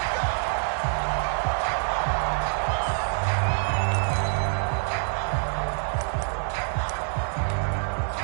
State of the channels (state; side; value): silent; left; 61 dB below the other